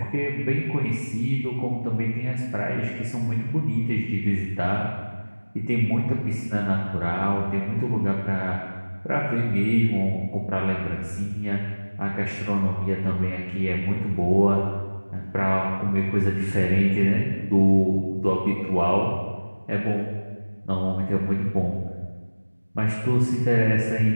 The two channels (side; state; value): both; inverted; correlation -1.00